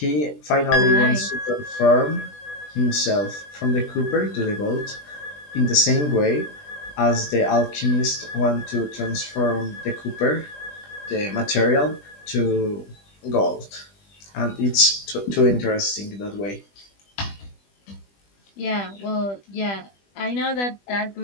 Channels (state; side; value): late; right; 20 ms